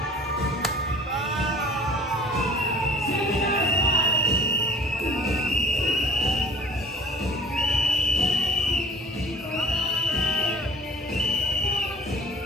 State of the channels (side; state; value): both; normal; correlation 0.47